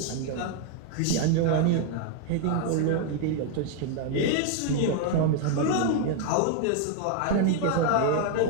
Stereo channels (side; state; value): both; different; correlation 0.00